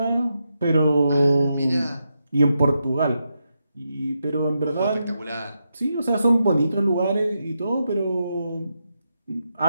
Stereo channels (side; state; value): both; inverted; correlation -0.85